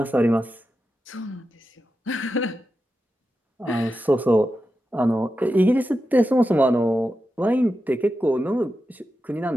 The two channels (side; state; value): both; normal; correlation 0.90